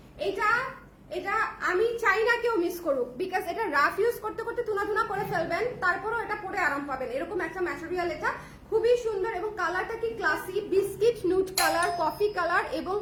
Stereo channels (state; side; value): identical; both; correlation 1.00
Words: এটা আমি চাই না কেউ মিস করুক, বিকজ এটা রাফ ইউজ করতে করতে তুনা করে ফেলবেন, তারপরও এটা পরে আরাম পাবেন। এরকম একটা ম্যাটেরিয়াল, এটা খুবই সুন্দর এবং কালারটা কি classy, biscuit নুট colour, coffee colour এবং